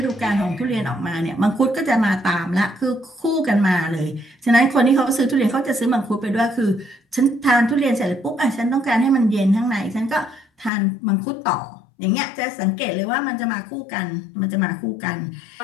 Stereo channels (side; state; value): right; drops out; at 10.7 s